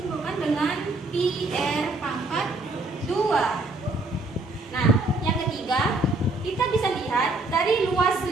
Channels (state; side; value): quieter; left; 3.0 dB